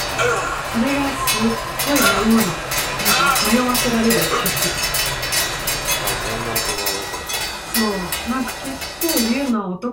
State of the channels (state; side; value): identical; both; correlation 1.00